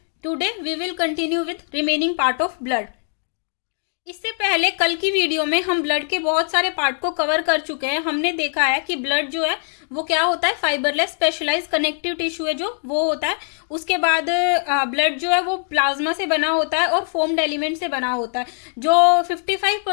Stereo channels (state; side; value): silent; right; 62 dB below the other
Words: Today we will continue with remaining part of blood. इससे पहले कल की video में हम ब्लड के बहुत सारे पार्ट को कवर कर चुके हैं। हमने देखा है कि ब्लड जो है वो क्या होता है, फाइबरलेस स्पेशलाइज कनेक्टिव टिश्यू है जो वो होता है। उसके बाद ब्लड जो है वो प्लाज्मा से बना होता है और फोम्ड एलिमेंट से बना होता है। जो